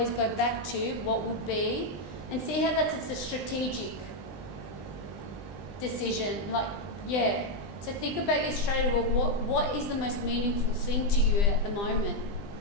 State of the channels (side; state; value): right; late; 20 ms